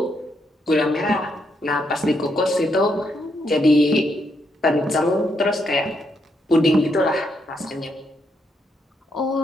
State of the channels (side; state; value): both; normal; correlation 0.78